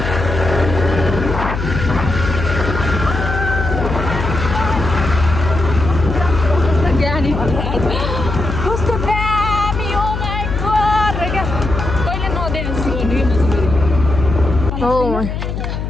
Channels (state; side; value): noise; left; hum, 4 dB below the sound